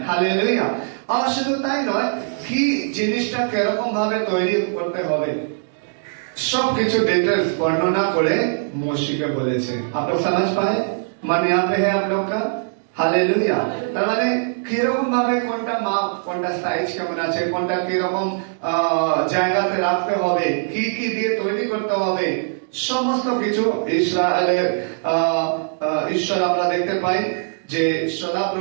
हालेलुया। और শুধু তাই নয়, কি জিনিসটা কিরকম ভাবে তৈরি করতে হবে সবকিছু ডিটেলস বর্ণনা করে মোশেকে বলেছে। आप लोग समझ पाए? मन यहाँ पे है आप लोग का? हालेलुया। তার মানে কিরকম ভাবে কোনটা মাপ, কোনটা সাইজ কেমন আছে, কোনটা কিরকম জায়গাতে রাখতে হবে, কি কি দিয়ে তৈরি করতে হবে, সমস্ত কিছু ইসরায়েলের ঈশ্বর আমরা দেখতে পাই যে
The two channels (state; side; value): silent; left; digital silence